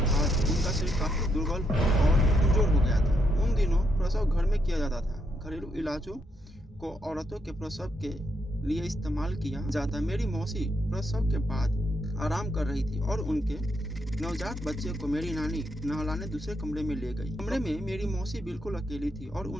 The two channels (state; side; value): normal; both; correlation 0.78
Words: बाद उनका शरीर काफी दुर्बल और कमजोर हो गया था। उन दिनों प्रसव घर में किया जाता था। घरेलू इलाजों को औरतों के प्रसव के लिए इस्तेमाल किया जाता। मेरी मौसी प्रसव के बाद आराम कर रही थी और उनके नवजात बच्चे को मेरी नानी नहलाने दूसरे कमरे में ले गई। कमरे में मेरी मौसी बिल्कुल अकेली थी और